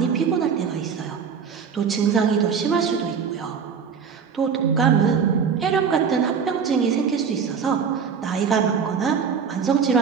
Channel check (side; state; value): left; quieter; 6.5 dB